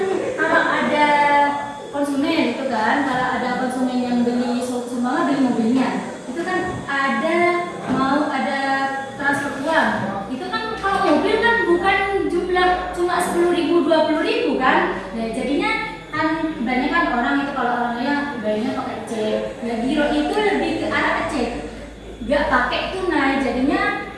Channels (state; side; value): identical; both; correlation 1.00